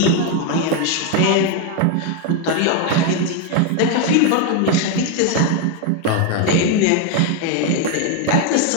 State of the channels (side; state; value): both; different; correlation 0.01